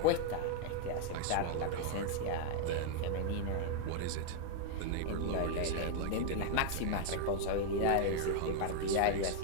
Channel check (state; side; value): different; both; correlation 0.00